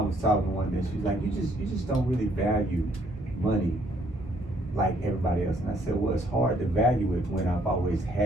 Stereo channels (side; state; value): both; normal; correlation 0.66